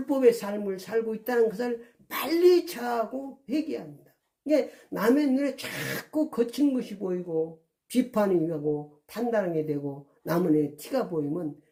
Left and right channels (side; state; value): both; identical; correlation 1.00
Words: 삶을 살고 있다는 것을 빨리 자하고 회개합니다. 이게 남의 눈에 자꾸 거친 것이 보이고 비판이 하고 판단하게 되고 남의 눈에 티가 보이면